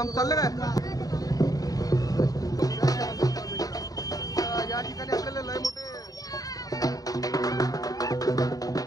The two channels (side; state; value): right; late; 0.18 ms